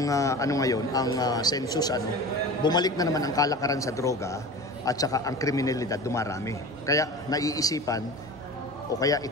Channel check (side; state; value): both; normal; correlation 0.34